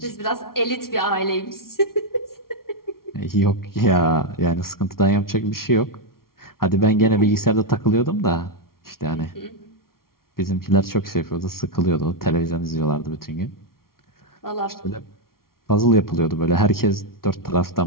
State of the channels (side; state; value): right; late; 0.93 ms